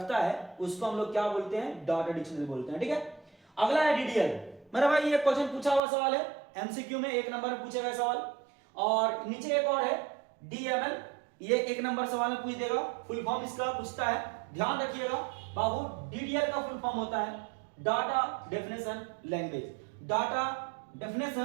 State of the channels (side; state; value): left; drops out; at 5.8 s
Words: है उसको हम लोग क्या बोलते हैं? डाटा डिक्शनरी बोलते हैं। ठीक है, अगला है डीडीएल। मेरा भाई ये क्वेश्चन पूछा हुआ सवाल है, एमसीक्यू में 1 नंबर में पूछे गए सवाल। और नीचे एक और है डीएमएल, ये 1 नंबर सवाल में पूछ देगा, फुल फॉर्म इसका पूछता है, ध्यान रखिएगा बाबू। डीडीएल का फुल फॉर्म होता है data definition language, data